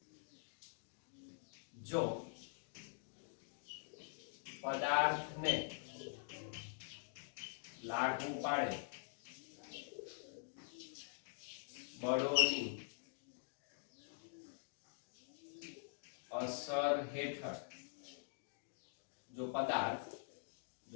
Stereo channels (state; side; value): silent; right; digital silence